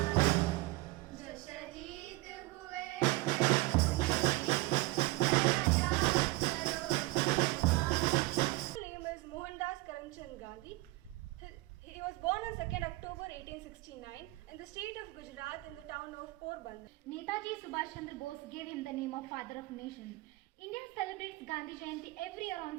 जो शहीद हुए Mohandas Karamchand Gandhi. He was born on 2nd October 1869 in the state of Gujarat in the town of Porbandar. Netaji Subhash Chandra Bose gave him the name of Father of Nation. India celebrates Gandhi Jayanti every year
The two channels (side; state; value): left; quieter; 21.9 dB